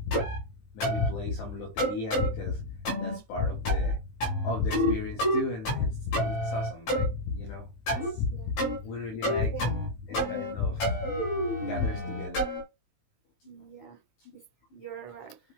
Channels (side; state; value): right; late; 18 ms